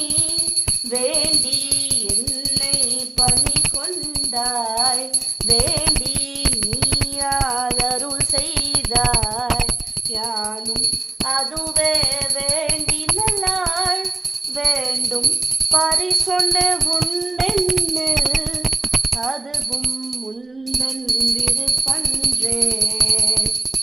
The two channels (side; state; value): left; quieter; 3.2 dB